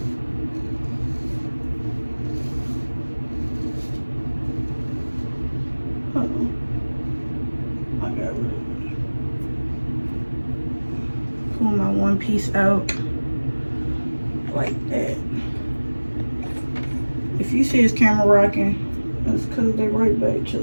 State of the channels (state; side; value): inverted; both; correlation -1.00